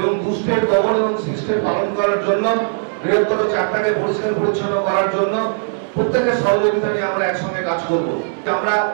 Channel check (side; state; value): left; silent; digital silence